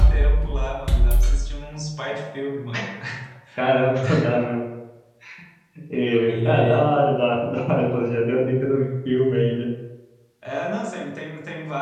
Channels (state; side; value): identical; both; correlation 1.00